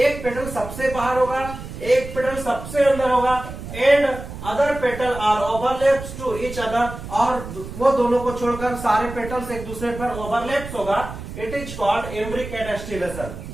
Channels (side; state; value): right; noise; rumble, 11 dB below the sound